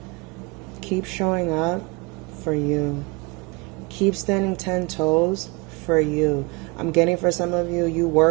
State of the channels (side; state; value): left; quieter; 27.6 dB